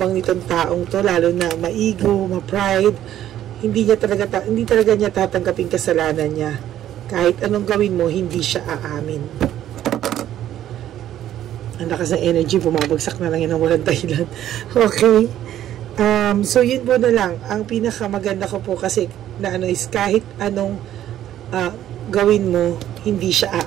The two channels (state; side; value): quieter; left; 11.9 dB